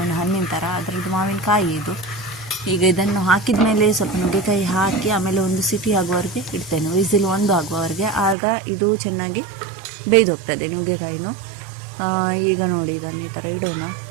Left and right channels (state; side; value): drops out; left; at 8.3 s